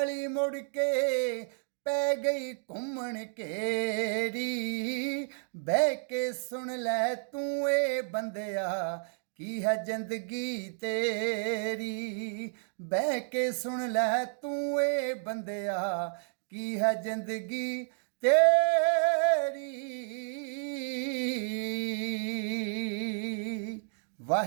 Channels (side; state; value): left; silent; 57 dB below the other